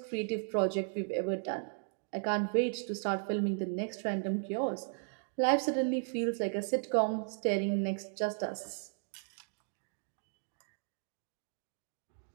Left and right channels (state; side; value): silent; left; digital silence